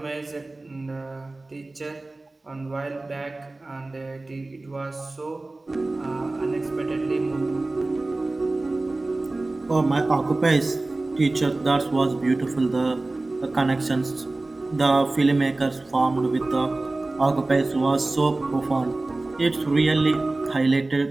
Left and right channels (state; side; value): quieter; left; 3.0 dB